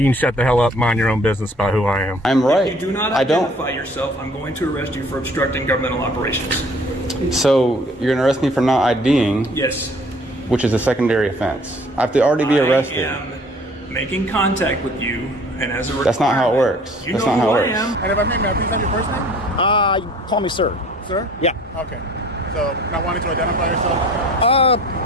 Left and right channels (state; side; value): normal; both; correlation 0.53